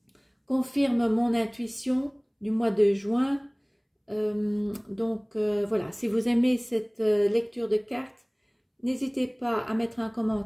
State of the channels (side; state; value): both; identical; correlation 1.00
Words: Confirme mon intuition du mois de juin. Voilà, si vous aimez cette lecture de cartes, n'hésitez pas à mettre un